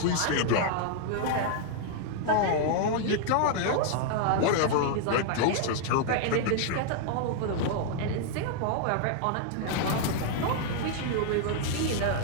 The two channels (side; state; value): both; different; correlation -0.01